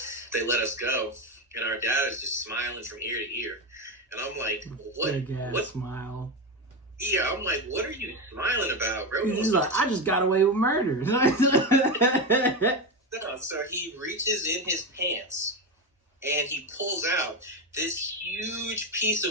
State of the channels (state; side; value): normal; both; correlation 0.15